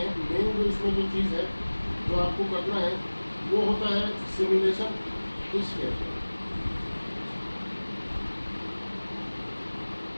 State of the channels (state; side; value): inverted; both; correlation -1.00